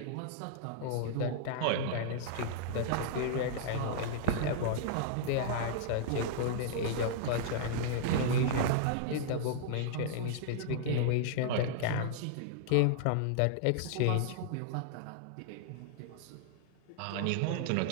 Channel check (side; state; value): both; different; correlation -0.01